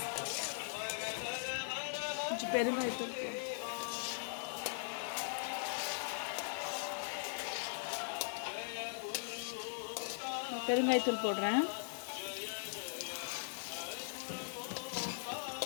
கொஞ்சம் பெருங்காயத்தூள். பெருங்காயத்தூள் போடுறேன்.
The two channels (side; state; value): right; silent; digital silence